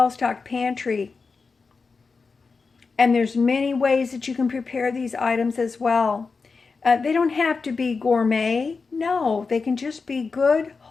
pantry. And there's many ways that you can prepare these items as well. They don't have to be gourmet. No, they can just be good,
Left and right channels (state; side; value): quieter; right; 4.6 dB